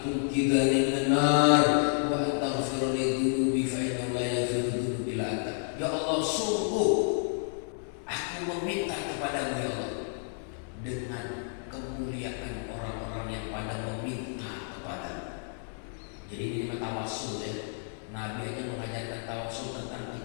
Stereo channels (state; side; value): silent; right; 57 dB below the other